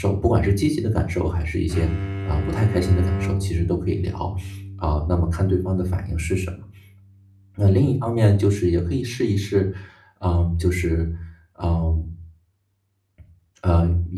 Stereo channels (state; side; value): identical; both; correlation 1.00